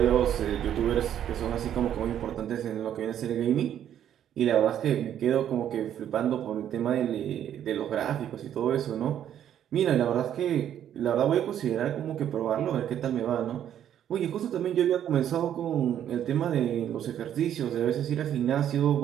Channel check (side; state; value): left; quieter; 10.3 dB